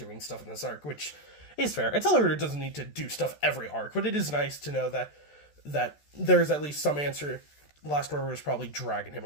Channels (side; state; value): right; late; 14 ms